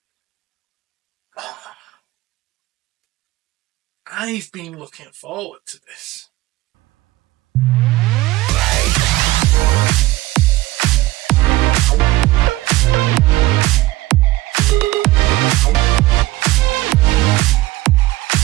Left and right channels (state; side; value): quieter; left; 18.1 dB